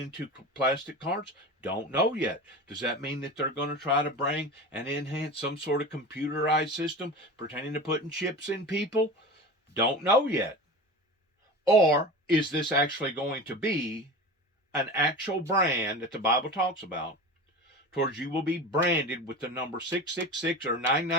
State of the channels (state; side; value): normal; both; correlation 0.31